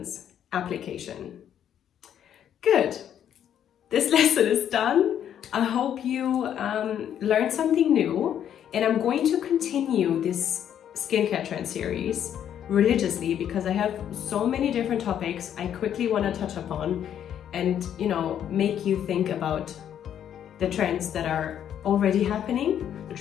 Application. Good. This lesson is done. I hope you learned something new, and I'm going to continue this skincare trend series religiously because I have so many different topics I quickly want to touch upon and make you think about the trends that are already happening, the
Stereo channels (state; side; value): quieter; right; 9.7 dB